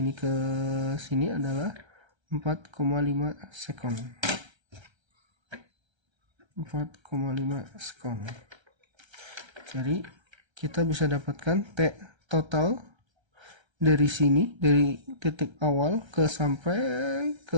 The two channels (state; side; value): late; left; 1.3 ms